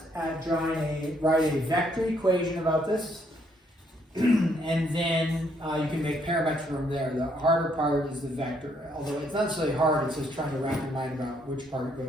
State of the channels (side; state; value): both; normal; correlation 0.71